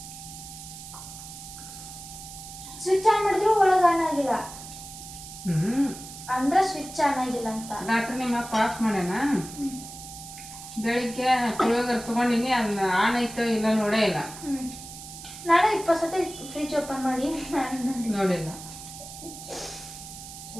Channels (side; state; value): right; noise; hiss, 13 dB below the sound